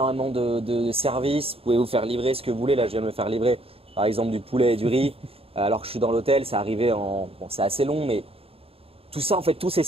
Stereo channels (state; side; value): late; left; 0.28 ms